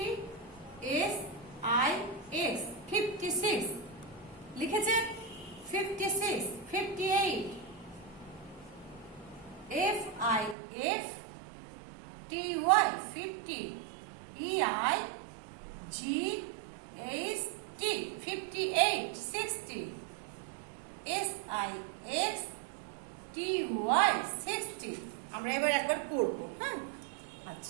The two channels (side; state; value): left; drops out; at 10.6 s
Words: SIX 56 লিখেছেন। 56, 58, FIF TY 50 EIGHT 58 60 SIX TY 60। আমরা এবার একবার পড়ব। হ্যাঁ,